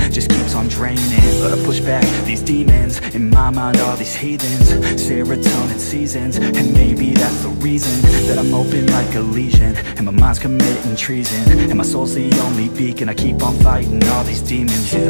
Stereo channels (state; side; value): inverted; both; correlation -1.00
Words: just keeps on draining. But I push back these demons in my mind, all these heathens. Serotonin seasons, and maybe that's the reason that I'm open like a lesion, and my mind's committing treason, and my soul's the only beacon. I keep on fighting all these demons.